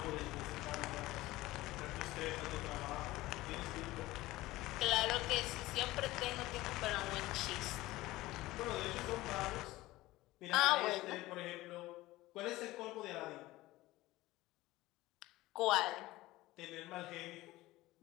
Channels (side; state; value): right; quieter; 18.1 dB